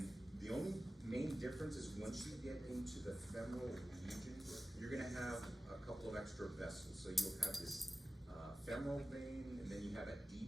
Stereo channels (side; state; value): both; normal; correlation 0.95